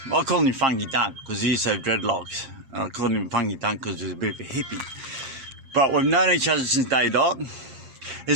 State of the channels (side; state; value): left; late; 7.5 ms